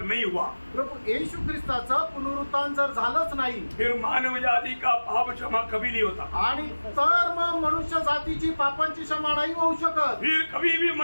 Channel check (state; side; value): inverted; both; correlation -1.00